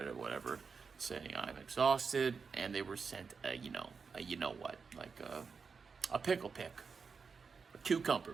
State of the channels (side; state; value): left; quieter; 5.3 dB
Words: whatever, saying I'm exhausted, and they were sent a you know what, like a pickle pick, a cucumber